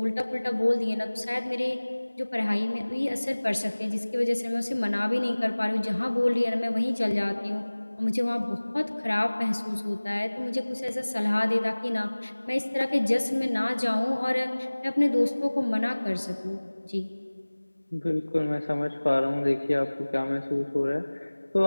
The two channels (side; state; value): both; inverted; correlation -1.00